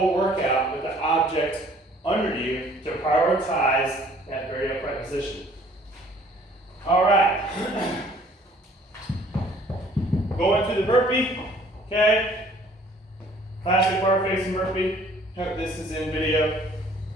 workout with the object under you to prioritize that very upright position. All right. Going through the burpee, okay? Classic bar facing burpee. Hope this is in video.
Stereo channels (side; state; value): both; normal; correlation 0.56